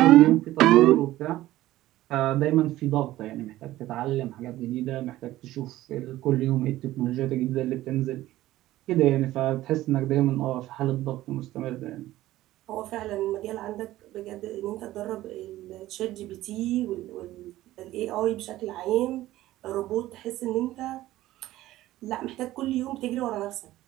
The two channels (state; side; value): quieter; left; 15.6 dB